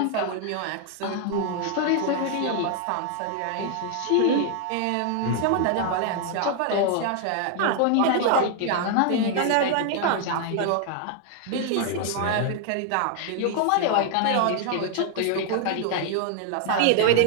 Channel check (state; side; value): different; both; correlation 0.00